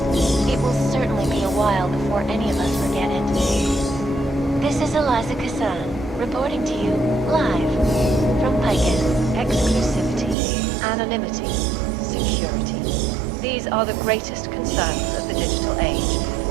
It will certainly be a while before any of us forget it. This is Eliza Kazan, reporting to you, live, from Picus. Exclusivity, anonymity, security. These are the greatest concerns of the digital age.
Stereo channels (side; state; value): left; drops out; at 10.4 s